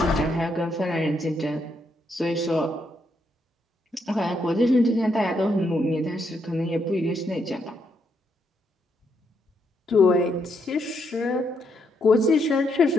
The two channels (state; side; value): normal; both; correlation 0.77